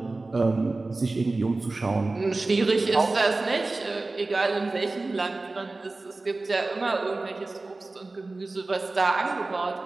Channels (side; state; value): left; quieter; 3.3 dB